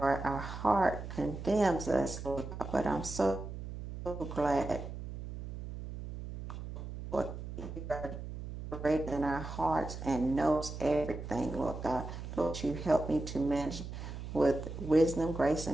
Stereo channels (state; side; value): noise; right; hum, 9 dB below the sound